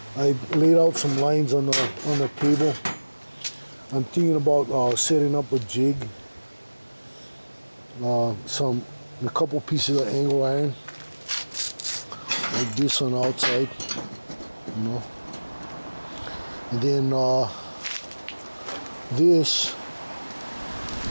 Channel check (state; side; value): inverted; both; correlation -1.00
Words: I laid out some lines on the table. I'm thinking about setting up a jig, a couple pieces of angle iron like this on the outside, you know. And then this